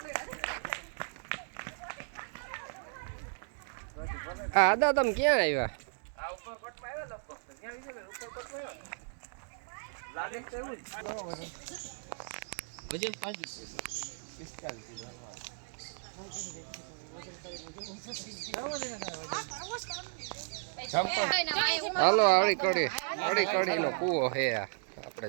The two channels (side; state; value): left; silent; digital silence